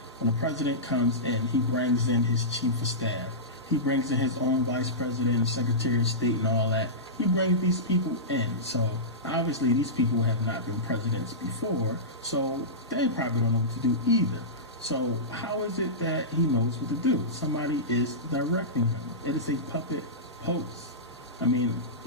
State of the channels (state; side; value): normal; both; correlation -0.17